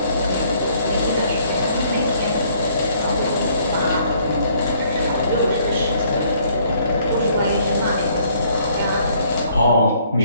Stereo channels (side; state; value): both; inverted; correlation -0.64